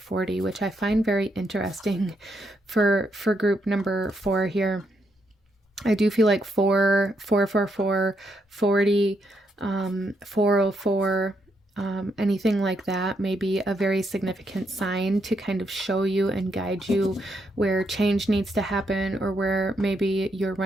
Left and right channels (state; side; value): normal; both; correlation 0.78